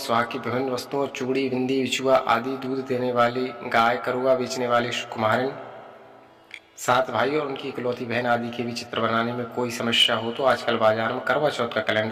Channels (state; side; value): identical; both; correlation 1.00